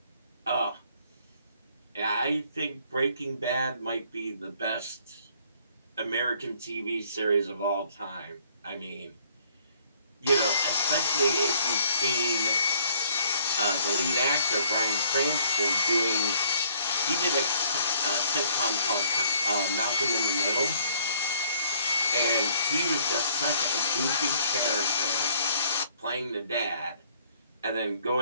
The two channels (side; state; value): both; inverted; correlation -0.62